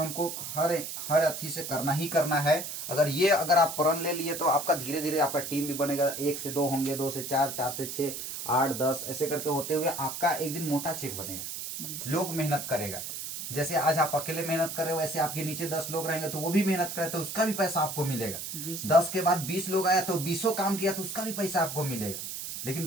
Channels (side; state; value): right; noise; hiss, 7 dB below the sound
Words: हर अथी से करना ही करना है, अगर आप प्रण ले लिए, तो आपका धीरे धीरे आपका टीम भी बनेगा। 1 से 2 होंगे, 2 से 4, 4 से 6, 8, 10 ऐसे करके होते हुए आपका एक दिन मोटा चेक बनेगा। लोग मेहनत करेगा, जैसे आज आप अकेले मेहनत कर रहे हो, वैसे आपके नीचे 10 लोग रहेंगे तो वो भी मेहनत करे, तो उसका भी पैसा आपको मिलेगा। 10 के बाद 20 लोग आया तो 20 काम किया तो उसका भी पैसा आपको मिलेगा। लेकिन